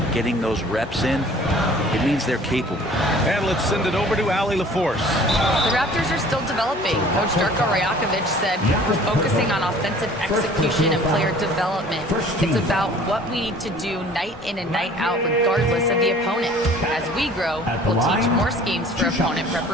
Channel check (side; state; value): both; normal; correlation 0.50